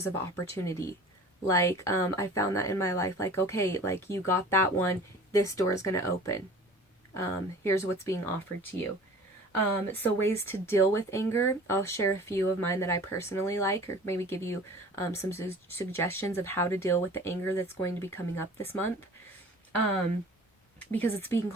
of opportunity. Like, I found that in my life, like, okay, like, you got that one, this door is going to open. Here's what's being offered to you. So ways to deal with anger, I'll share a few of mine that I personally like, or maybe give you some suggestions of how to deal with the anger that's going to be coming up this month, because it's being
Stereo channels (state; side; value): normal; both; correlation 0.44